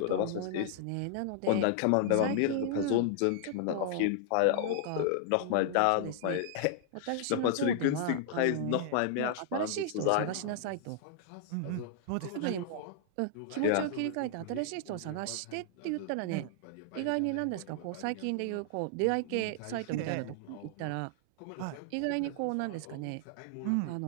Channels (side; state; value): both; different; correlation -0.01